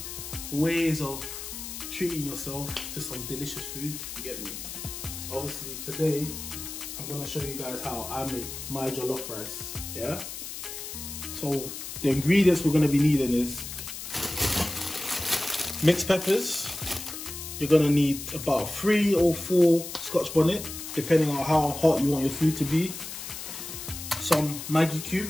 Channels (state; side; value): noise; left; hiss, 9 dB below the sound